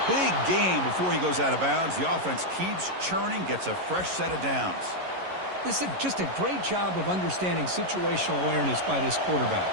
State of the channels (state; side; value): late; left; 11 ms